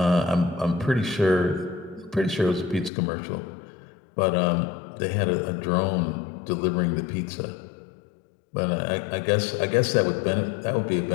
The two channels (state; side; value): drops out; right; at 2.9 s